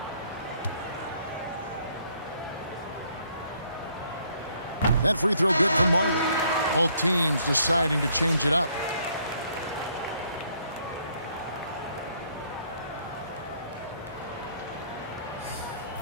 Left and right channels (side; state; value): both; inverted; correlation -0.66